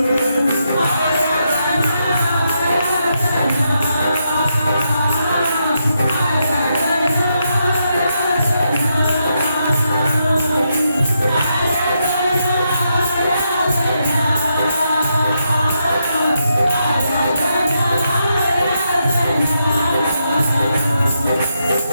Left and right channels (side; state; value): both; inverted; correlation -0.82